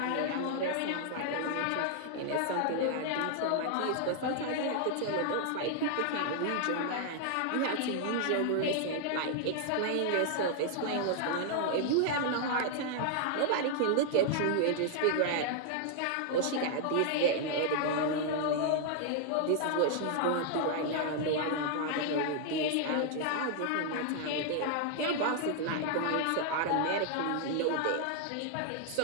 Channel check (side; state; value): both; different; correlation 0.00